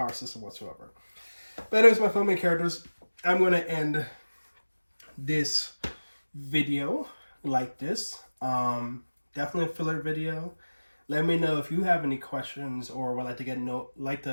system whatsoever. But anyways, my filming characters, I'm going to end this video like this. Definitely a filler video. Let me know if you have any questions or would like to can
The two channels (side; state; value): both; inverted; correlation -1.00